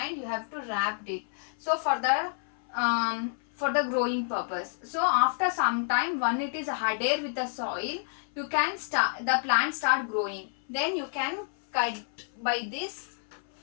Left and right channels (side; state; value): right; silent; 58 dB below the other